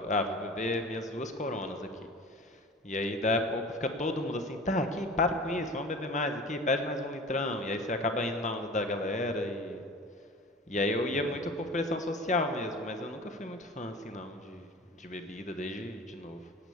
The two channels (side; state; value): both; normal; correlation 0.39